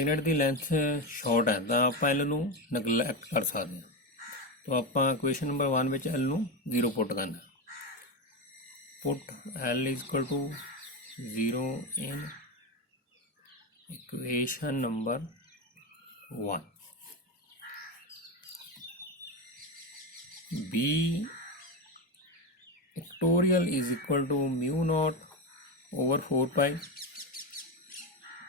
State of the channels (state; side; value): normal; both; correlation 0.14